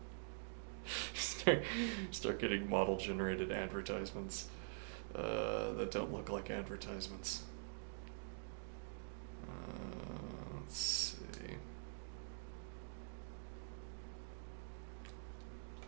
start getting model generated advertisements that don't look like advertisements. Let's see.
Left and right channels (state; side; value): silent; left; digital silence